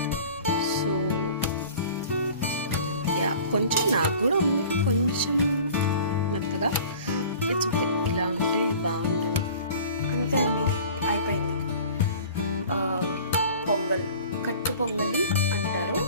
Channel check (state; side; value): inverted; both; correlation -0.44